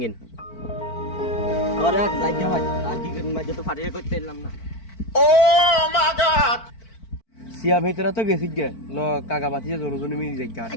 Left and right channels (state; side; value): late; right; 4.5 ms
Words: গিন আরে যাই ভাই আর কি করি মাঝে তো ফাটিয়ে করতে এলাম না সিয়া ভেতরা তো গেছি গিয়া ন কাকা বাতি যে জনজনে মিলি যাই